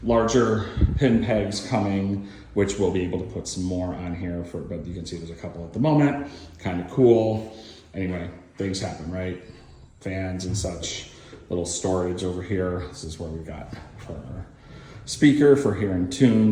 larger pin pegs coming, which we'll be able to put some more on here but you can see there's a couple at the moment. Kind of cool. Anyway, things happen, right? Fans and such. Little storage over here. This is where we got for our speaker for hearing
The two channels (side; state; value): both; identical; correlation 1.00